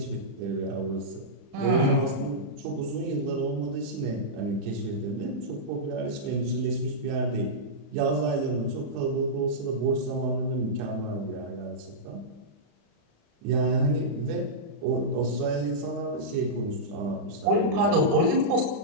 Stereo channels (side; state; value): left; late; 35 ms